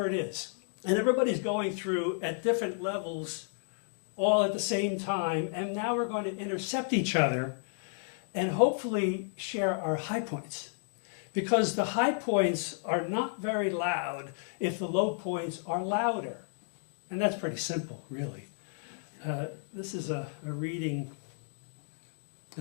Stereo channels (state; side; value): silent; right; digital silence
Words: it is. And everybody's going through at different levels all at the same time, and now we're going to intercept each other and hopefully share our high points. Because the high points are not very loud if the low points are louder. And that's pretty simple, really. This is a reading